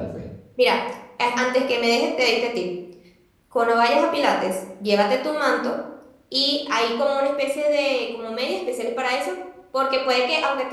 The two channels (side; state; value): both; identical; correlation 1.00